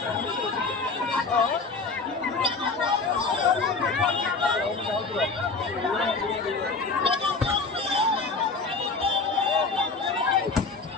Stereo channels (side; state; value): right; quieter; 4.2 dB